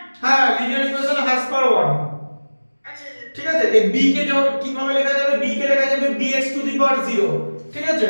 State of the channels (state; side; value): inverted; both; correlation -1.00